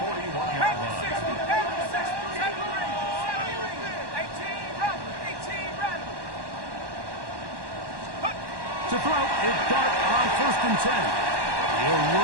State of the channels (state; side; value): late; left; 1.1 ms